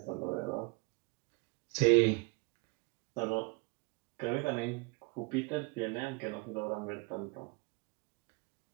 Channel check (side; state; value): left; quieter; 29.8 dB